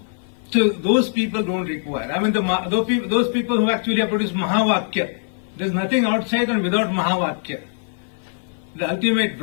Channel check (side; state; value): right; silent; 55 dB below the other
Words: So those people don't require. I mean, those people who actually have produced Mahavakya, there's nothing outside and without Mahavakya. the ultimate